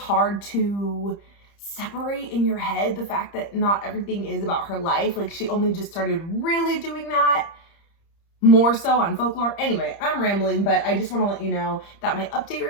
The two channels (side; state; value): right; late; 30 ms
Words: to separate in your head the fact that not everything is about her life. Like she only just started really doing that more so on Folklore. Anyway, I'm rambling, but I just want to let you know that my update